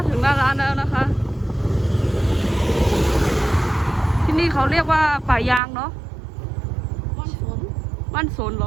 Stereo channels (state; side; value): drops out; left; at 5.6 s